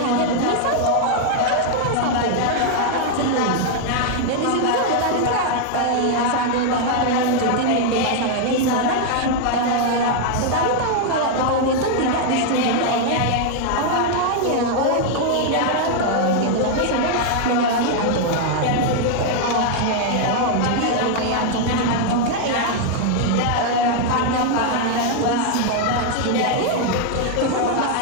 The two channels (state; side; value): different; both; correlation 0.00